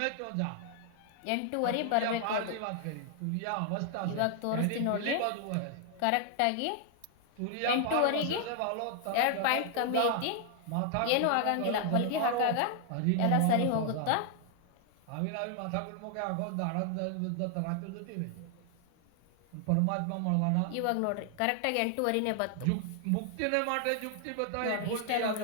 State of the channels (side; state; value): both; different; correlation 0.00